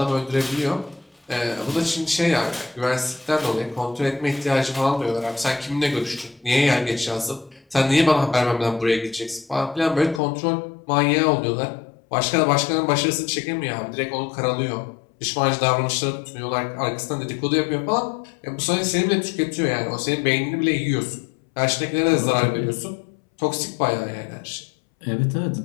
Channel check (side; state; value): right; drops out; at 10.2 s